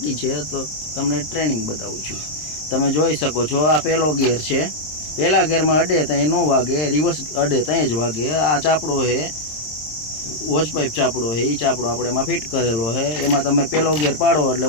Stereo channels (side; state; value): right; late; 26 ms